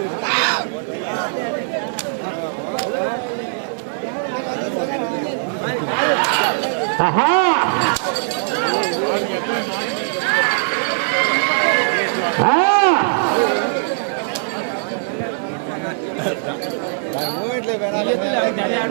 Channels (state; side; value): silent; left; digital silence